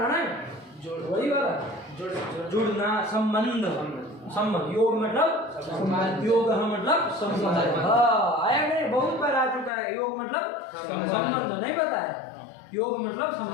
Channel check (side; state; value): right; drops out; at 9.7 s